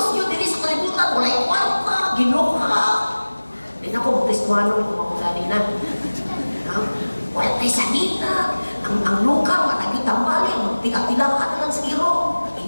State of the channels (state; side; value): inverted; both; correlation -1.00